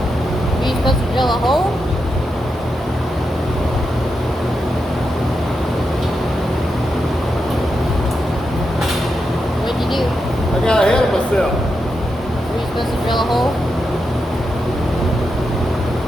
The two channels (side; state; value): both; normal; correlation 0.86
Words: Are you supposed to drill a hole? What'd you do? I got ahead of myself. Were you supposed to drill a hole?